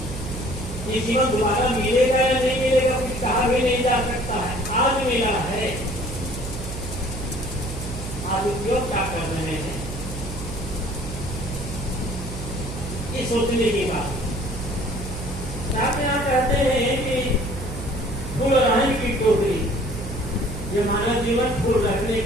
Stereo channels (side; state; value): right; noise; hum, 8 dB below the sound